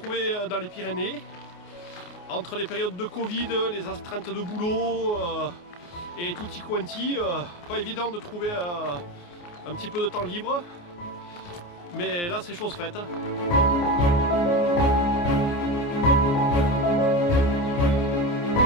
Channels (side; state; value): right; late; 29 ms